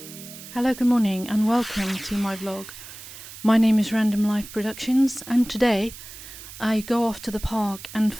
Hello, good morning and welcome to my vlog. My name is Random Life Productions and today I go off to the park and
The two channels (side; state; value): right; noise; hiss, 15 dB below the sound